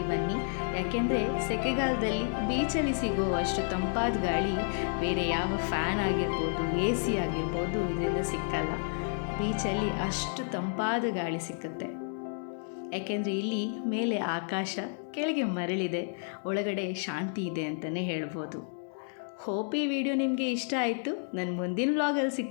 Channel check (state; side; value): silent; right; digital silence